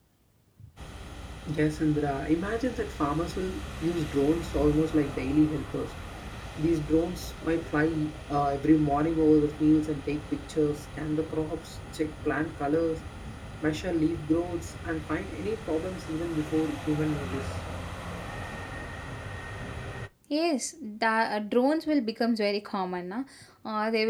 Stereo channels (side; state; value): both; identical; correlation 1.00